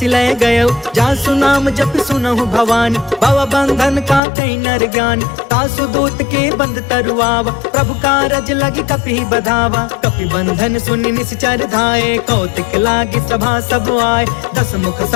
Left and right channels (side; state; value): right; drops out; at 4.2 s